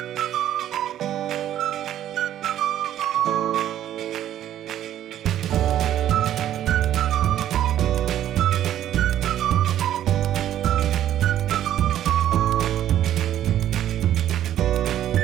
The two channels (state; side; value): quieter; left; 11.6 dB